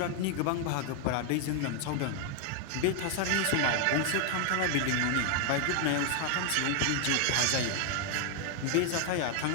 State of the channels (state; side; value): different; both; correlation 0.00